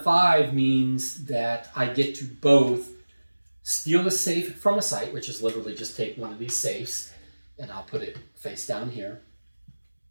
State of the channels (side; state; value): both; inverted; correlation -1.00